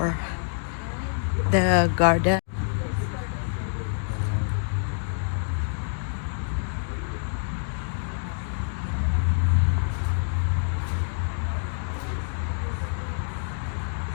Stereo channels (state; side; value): silent; right; digital silence